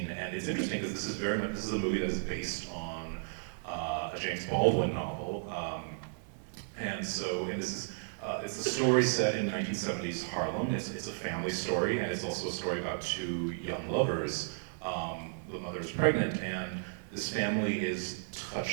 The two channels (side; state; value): left; silent; 55 dB below the other